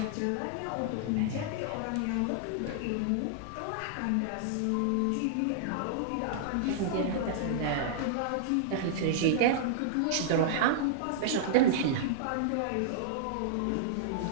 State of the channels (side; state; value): both; different; correlation -0.01